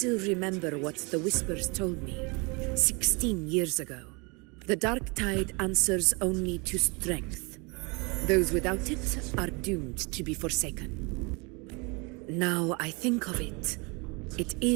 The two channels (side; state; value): left; quieter; 29.6 dB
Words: remember what the Whispers told me 16 years ago? The dark tide answers only to strength. Those without it are doomed to be forsaken. Now I think of it, it